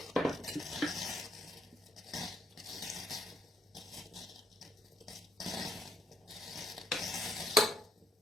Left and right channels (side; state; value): both; normal; correlation 0.73